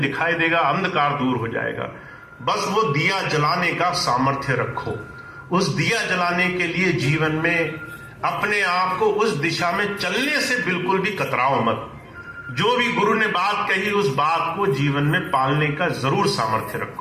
दिखाई देगा, अंधकार दूर हो जाएगा। बस वो दिया जलाने का सामर्थ्य रखो। उस दिया जलाने के लिए जीवन में अपने आप को उस दिशा में चलने से बिल्कुल भी कतराओ मत। जो भी गुरु ने बात कही उस बात को जीवन में पालने का जरूर सामर्थ्य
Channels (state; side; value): identical; both; correlation 1.00